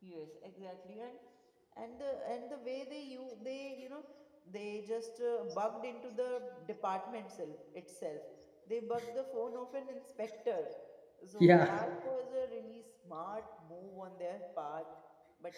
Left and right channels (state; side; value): identical; both; correlation 1.00